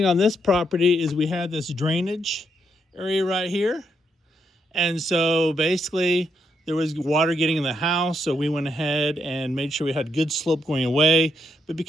on this property is we had this drainage area right here. And so basically there was water getting in the house, so we went ahead and made sure we had good slope going away. But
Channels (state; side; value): normal; both; correlation 0.78